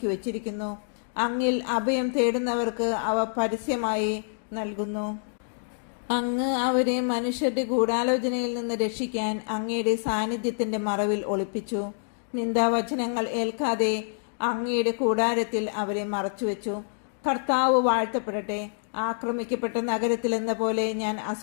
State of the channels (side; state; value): right; silent; digital silence